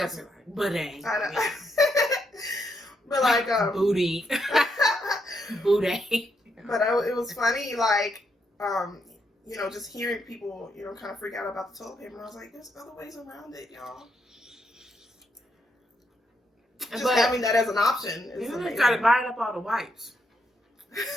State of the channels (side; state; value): both; normal; correlation 0.78